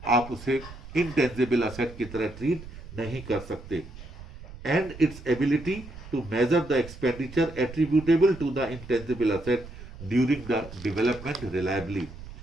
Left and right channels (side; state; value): right; noise; rumble, 15 dB below the sound